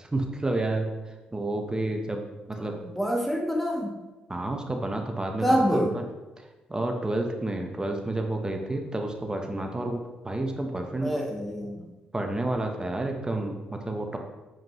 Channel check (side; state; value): both; normal; correlation 0.89